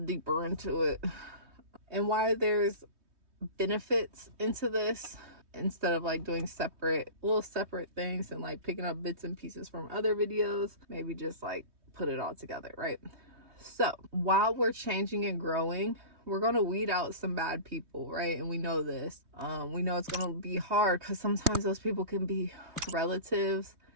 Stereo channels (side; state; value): left; late; 3.2 ms